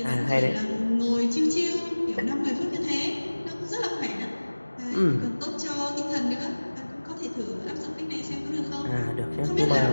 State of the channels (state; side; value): inverted; both; correlation -1.00